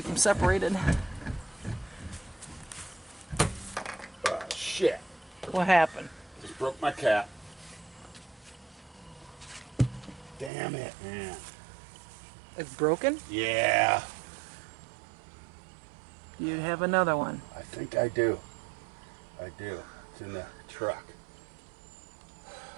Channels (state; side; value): drops out; left; at 10.5 s